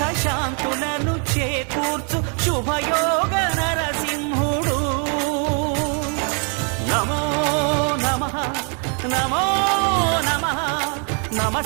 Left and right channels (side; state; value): left; quieter; 39.6 dB